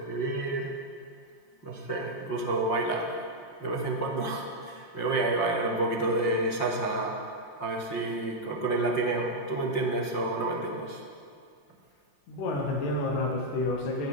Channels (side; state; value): right; late; 5.6 ms